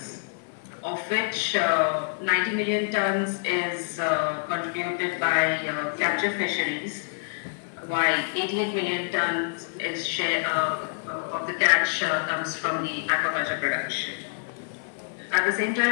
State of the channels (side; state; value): right; silent; 60 dB below the other